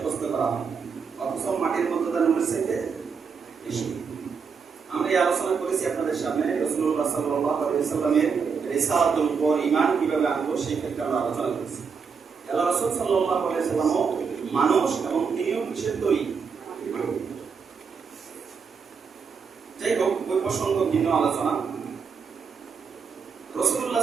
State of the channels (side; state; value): left; quieter; 5.8 dB